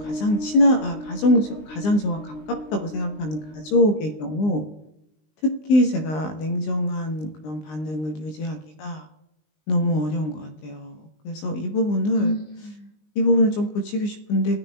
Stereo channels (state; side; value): late; right; 20 ms